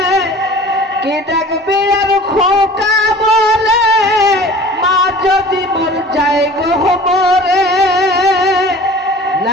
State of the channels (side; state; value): both; normal; correlation 0.43